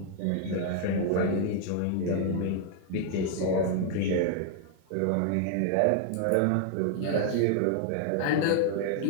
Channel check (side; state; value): both; different; correlation 0.00